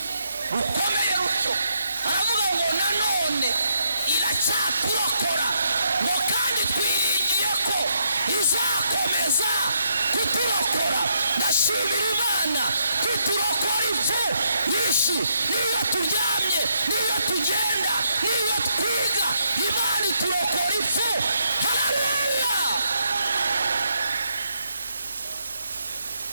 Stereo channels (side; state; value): both; inverted; correlation -0.76